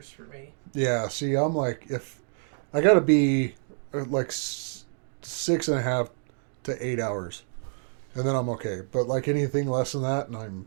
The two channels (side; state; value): left; silent; 60 dB below the other